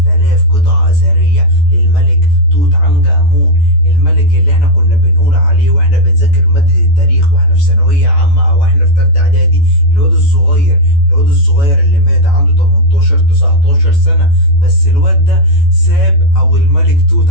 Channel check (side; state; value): right; late; 14 ms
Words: قطعة اثرية للملك توت عنخ امون، الملك اللي احنا كنا بنقول عليه واحنا بنذاكر مادة التاريخ واحنا في ثانوية عامة او احنا في تالتة اعدادي، الواد الصغير اللي مات عنده 18 19 سنة. بس الواد ده ساب، او الملك توت